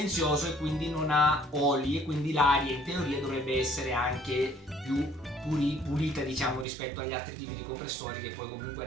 e quindi non ha oli e quindi l'aria in teoria dovrebbe essere anche più pulita diciamo rispetto agli altri tipi di compressori che poi comunque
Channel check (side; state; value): left; drops out; at 6.7 s